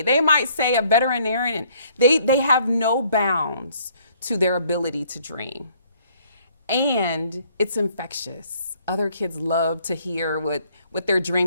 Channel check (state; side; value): inverted; both; correlation -0.63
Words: They might say a veterinarian. They have no bounds to their ability to dream. And it's infectious. Other kids love to hear what they're